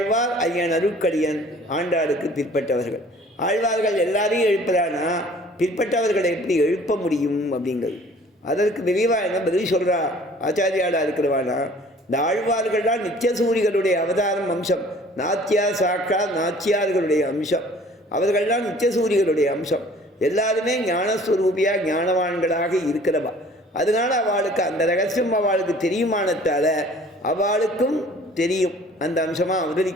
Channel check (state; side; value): normal; both; correlation 0.52